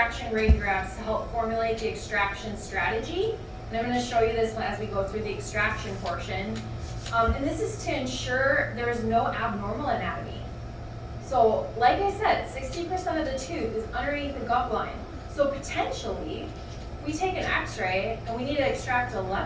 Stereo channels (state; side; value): identical; both; correlation 1.00